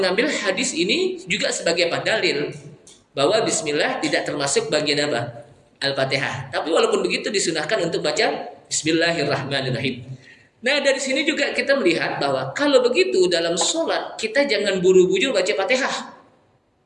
hadis ini juga sebagai apa? Dalil bahwa bismillah tidak termasuk bagian apa? Al-Fatihah. Tapi walaupun begitu disunahkan untuk baca Bismillahirrahmanirrahim. Nah, dari sini juga kita melihat bahwa kalau begitu dalam sholat kita jangan buru-buru baca Fatihah.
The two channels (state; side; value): identical; both; correlation 1.00